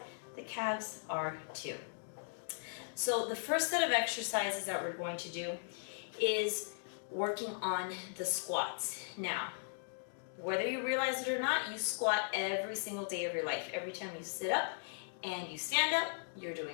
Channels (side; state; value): right; silent; digital silence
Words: The calves are too. So the first set of exercises that we're going to do is working on the squats. Now, whether you realize it or not, you squat every single day of your life. Every time you sit up and you stand up, you're